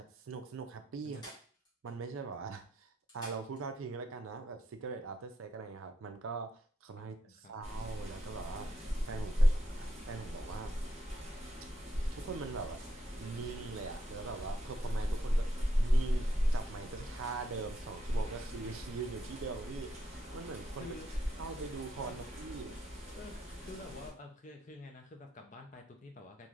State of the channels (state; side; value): normal; both; correlation 0.80